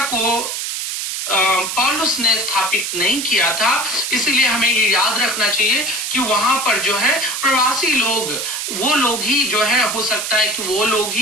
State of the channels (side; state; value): right; noise; hiss, 3 dB below the sound